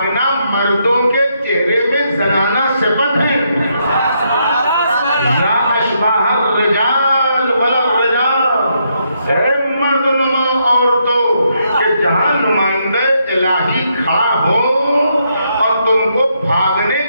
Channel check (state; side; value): inverted; both; correlation -0.77